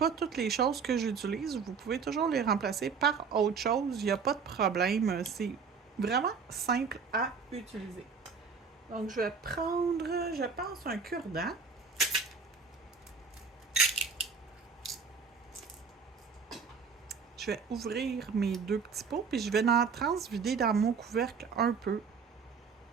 toutes les choses que j'utilise, vous pouvez toujours les remplacer par autre chose. Il n'y a pas de problème. C'est vraiment simple à utiliser. Donc, je vais prendre, je pense, un cure-dent. Je vais ouvrir mes 2 petits pots, puis je vais en transvider dans mon couvercle un peu.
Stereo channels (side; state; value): left; quieter; 5.5 dB